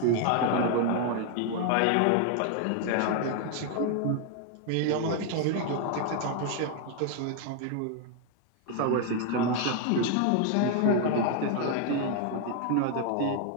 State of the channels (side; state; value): both; different; correlation 0.00